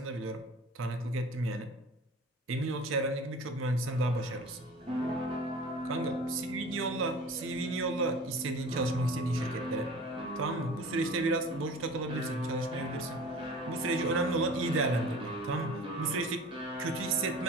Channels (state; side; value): normal; both; correlation 0.41